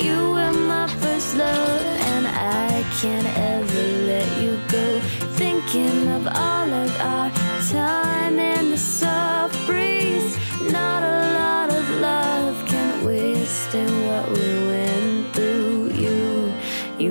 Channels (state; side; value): inverted; both; correlation -1.00